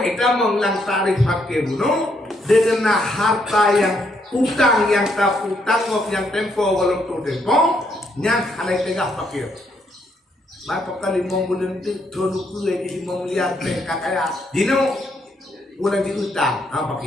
itu mengulang tarikh fakir buno dengan harta yang utang yang tak utang yang tempo walau tempo yang halai tegak fakir. Maka kali mau bulan itu dulu kue di 5 miliar kaya dino bulan di utang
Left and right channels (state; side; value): normal; both; correlation 0.74